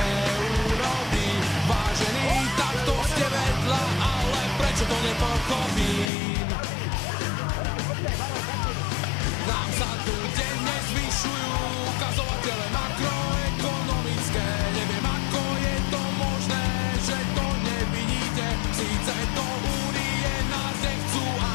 Vážení, takto ste vedľa, ale prečo to nepochopím? Nám sa tu denne zvyšujú ukazovatele makroekonomické. Neviem, ako je to možné, že to nevidíte. Síce do únie nás nechcú,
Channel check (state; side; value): drops out; right; at 6.1 s